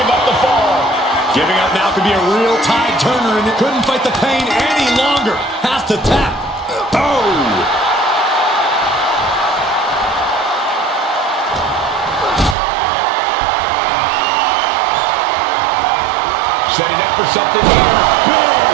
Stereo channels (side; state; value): left; drops out; at 12.6 s